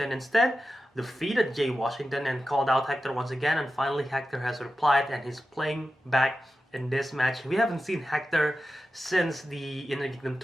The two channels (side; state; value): both; normal; correlation 0.92